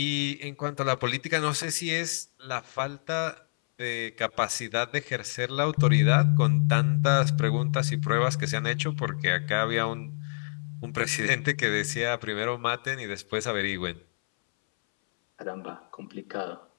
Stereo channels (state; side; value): silent; right; 60 dB below the other